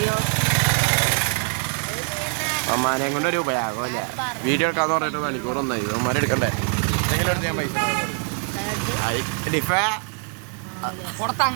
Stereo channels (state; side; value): quieter; left; 39.6 dB